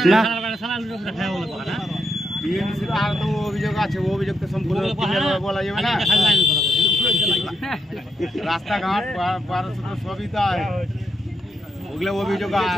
টিএমসির আর তো অভিযোগ আছে অভিযোগ তো সম্পূর্ণ বলা যাবে না রাস্তাঘাট পারস্য সবই তো ওগুলো অভিযোগ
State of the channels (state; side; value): normal; both; correlation 0.81